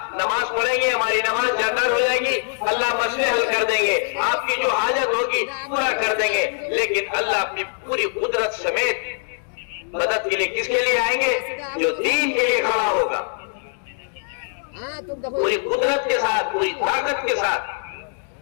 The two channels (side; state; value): right; silent; digital silence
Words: نماز پڑھیں گے، ہماری نماز جاکار ہو جائے گی، اللہ مسئلے حل کر دیں گے، آپ کی جو حاجت ہوگی پورا کر دیں گے. لیکن اللہ اپنی پوری قدرت سمیت مدد کے لیے کس کے لیے آئیں گے؟ جو دین کے لیے کھڑا ہوگا، پوری قدرت کے ساتھ، پوری طاقت کے ساتھ،